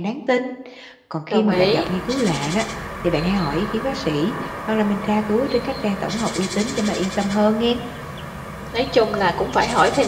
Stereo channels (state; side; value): identical; both; correlation 1.00